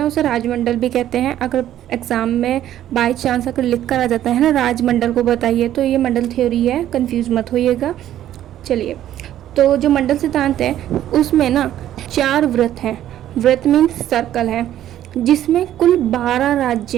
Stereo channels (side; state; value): left; quieter; 12.1 dB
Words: उसे राजमंडल भी कहते हैं। अगर एग्ज़ाम में बाई चांस अगर लिख कर आ जाता है ना राजमंडल को बताइए, तो ये मंडल थ्योरी है, कंफ्यूज मत होइएगा। चलिए, तो जो मंडल सिद्धांत है उसमें ना 4 वृत्त हैं। वृत्त मीन्स सर्कल है, जिसमें कुल 12